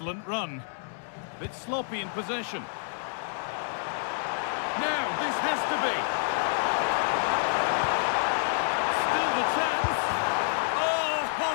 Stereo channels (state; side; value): silent; right; 59 dB below the other